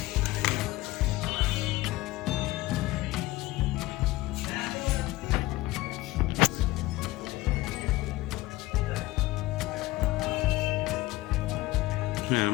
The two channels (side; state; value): right; quieter; 18.7 dB